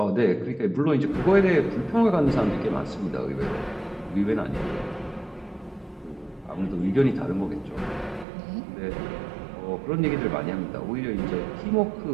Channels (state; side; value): drops out; left; at 8.2 s